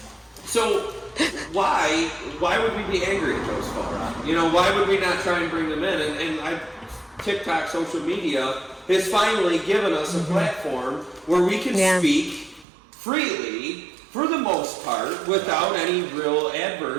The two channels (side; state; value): left; drops out; at 12.7 s